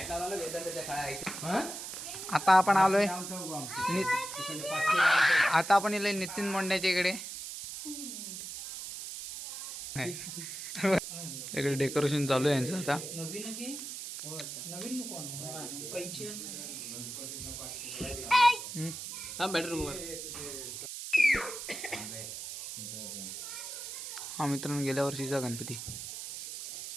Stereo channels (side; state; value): right; noise; hiss, 8 dB below the sound